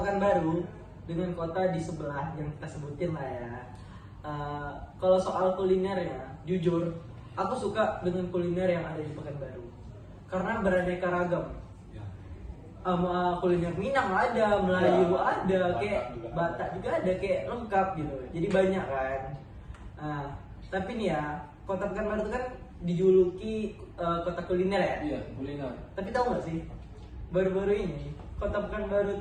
dengan kota di sebelah yang kita sebutin lah ya. Kalau soal kulinernya, jujur, aku suka dengan kuliner yang ada di Pekanbaru karena beraneka ragam. Kuliner Minang ada, Melayu Ya, ada, Batak kayak juga ada. Batak juga ada, kayak lengkap gitu. Jadi banyak kan. Tapi nih ya, Kota Pekanbaru itu kan dijuluki kota kuliner ya. Iya, kuliner. Tapi tahu nggak sih, baru-baru ini Kota Pekanbaru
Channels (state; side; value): identical; both; correlation 1.00